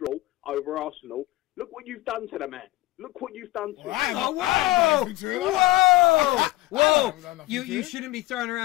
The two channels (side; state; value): right; quieter; 19.0 dB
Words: over Arsenal. Look what you've done to the man. Look what you've done to him. Oh, whoa! Whoa! Whoa! You shouldn't be throwing